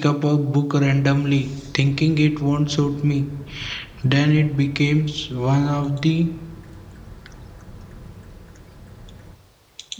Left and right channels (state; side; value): identical; both; correlation 1.00